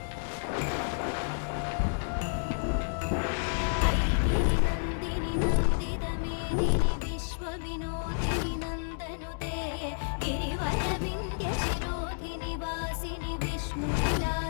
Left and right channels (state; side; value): silent; right; 57 dB below the other